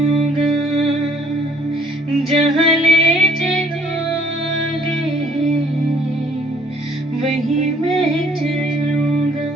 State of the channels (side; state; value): both; normal; correlation 0.60